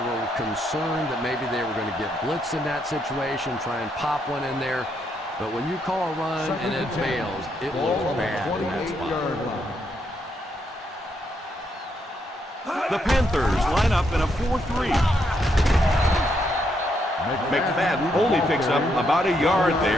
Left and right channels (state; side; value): normal; both; correlation 0.77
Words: concerned that maybe they were going to get blitzed in that situation, try and pop one in there. But when you call a run and it fails, it looks bad in that spot. The Panthers line up in a 4-3. McFadden only picks up about a yard